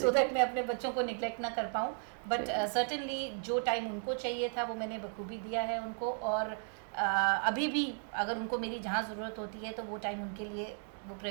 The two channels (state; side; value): silent; left; 54 dB below the other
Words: दैट मैं अपने बच्चों को निगलेक्ट ना कर पाऊँ। बट सर्टेनली जो टाइम उनको चाहिए था वो मैंने बखूबी दिया है उनको, और अभी भी अगर उनको मेरी जहाँ ज़रूरत होती है तो वो टाइम उनके लिए वो